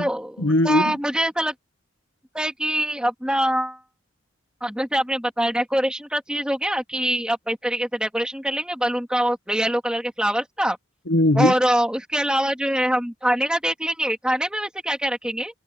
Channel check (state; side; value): normal; both; correlation 0.83